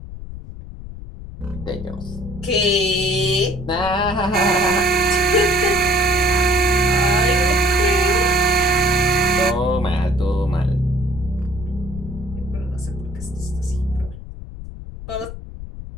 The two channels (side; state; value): left; noise; rumble, 11 dB below the sound